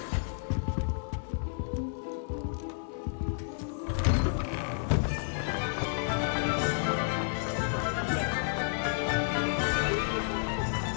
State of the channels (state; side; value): silent; right; 57 dB below the other